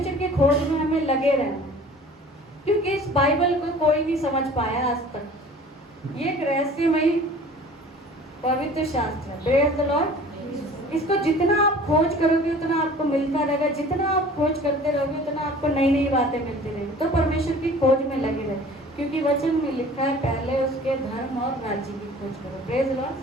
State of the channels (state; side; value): normal; both; correlation 0.46